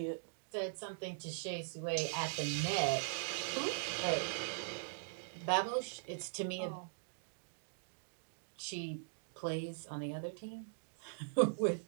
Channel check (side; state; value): left; silent; digital silence